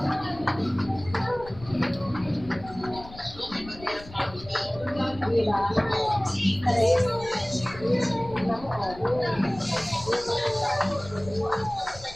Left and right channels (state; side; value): noise; left; rumble, 17 dB below the sound